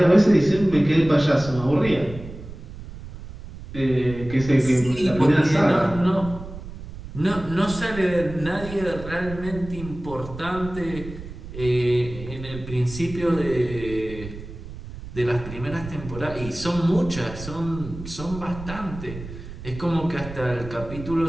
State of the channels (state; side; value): noise; right; rumble, 12 dB below the sound